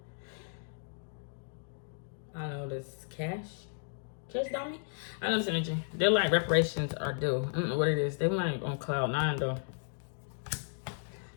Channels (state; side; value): silent; right; digital silence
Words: I know this cash dummy. I know this energy. They're like reparations are due. I don't know what it is. They like on cloud 9 though.